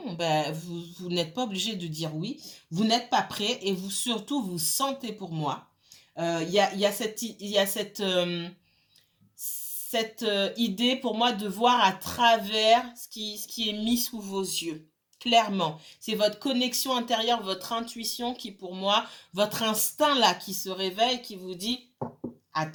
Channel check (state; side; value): identical; both; correlation 1.00